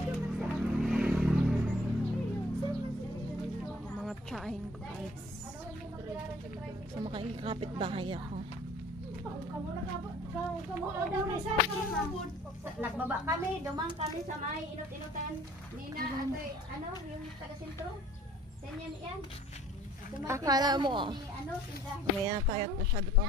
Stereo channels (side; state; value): both; normal; correlation 0.54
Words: Mga tsahin ko guys. So makikapit bahay ako. Nagbaba kami, dumang kami sa may inut-inutan. Nina, ano, yung taga-sentro. Ganyan yan. Akala mo, may tayo at masyado pang